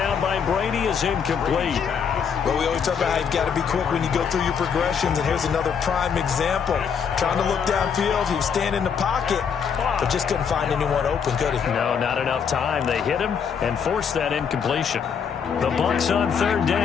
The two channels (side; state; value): right; quieter; 6.9 dB